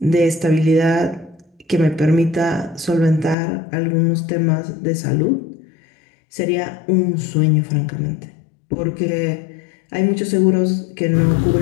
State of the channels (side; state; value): right; drops out; at 3.4 s